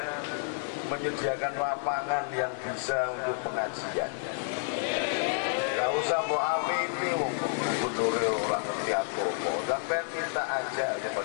menyediakan lapangan yang bisa untuk pengajian. Gak usah mau amini gubernurnya orang ngerti agama, sampai minta aja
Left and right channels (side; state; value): right; silent; digital silence